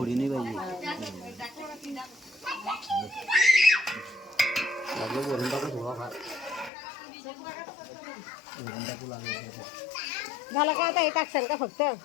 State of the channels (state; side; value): drops out; right; at 6.7 s